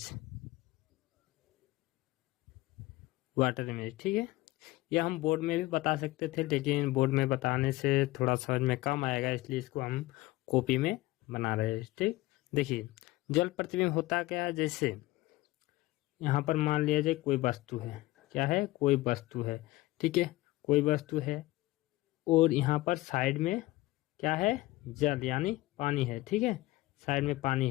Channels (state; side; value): quieter; right; 18.7 dB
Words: water image, ठीक है। यह हम बोर्ड में भी बता सकते थे, लेकिन बोर्ड में बताने से थोड़ा समझ में कम आएगा, इसलिए इसको हम कॉपी में बना रहे हैं, ठीक। देखिए, जल प्रतिबिंब होता क्या है। जैसे यहाँ पर मान लिया जाए कोई वस्तु है, क्या है? कोई वस्तु है, ठीक है। कोई वस्तु है और यहाँ पर साइड में क्या है? जल यानी पानी है, ठीक है। साइड में पानी